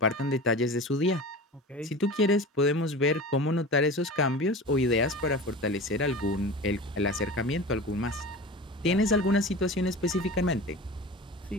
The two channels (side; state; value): both; normal; correlation 0.33